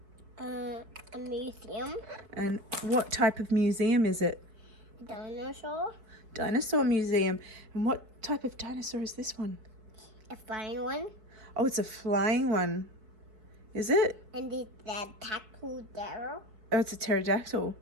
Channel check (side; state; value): left; late; 4.6 ms